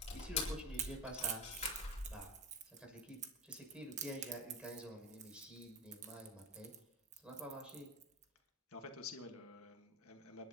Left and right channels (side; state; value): both; normal; correlation 0.24